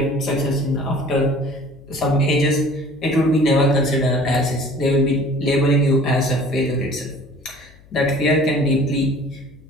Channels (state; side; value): noise; left; hum, 25 dB below the sound